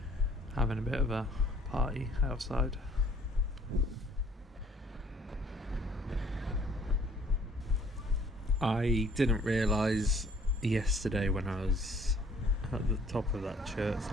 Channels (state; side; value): normal; both; correlation 0.58